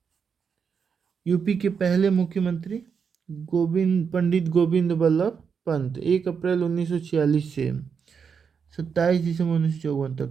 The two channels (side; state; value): left; quieter; 6.4 dB